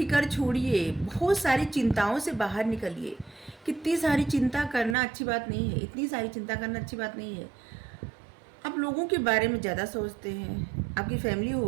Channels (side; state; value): left; drops out; at 5.0 s